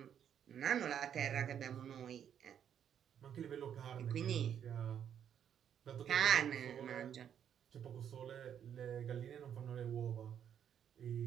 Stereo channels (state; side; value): quieter; left; 9.0 dB